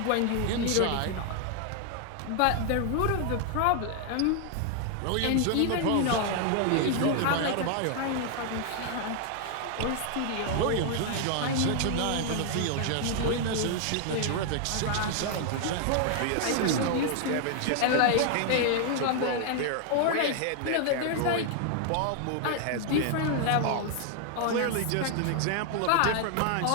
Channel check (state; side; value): different; both; correlation 0.00